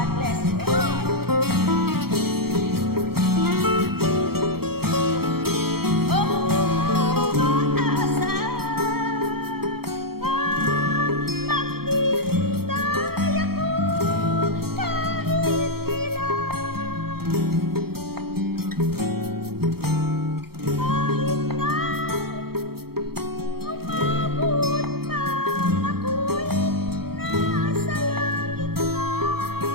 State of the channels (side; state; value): left; late; 0.95 ms